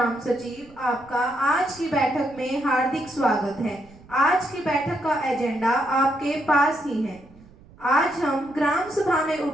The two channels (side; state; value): right; noise; rumble, 24 dB below the sound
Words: सचिव, आपका आज की बैठक में हार्दिक स्वागत है। आज की बैठक का एजेंडा आपके पास ही है। आज हम ग्राम सभा में